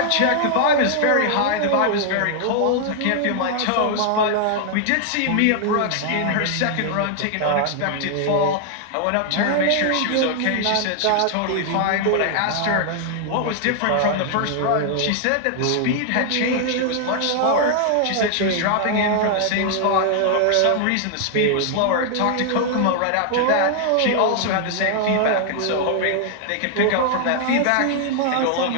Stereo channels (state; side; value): different; both; correlation 0.00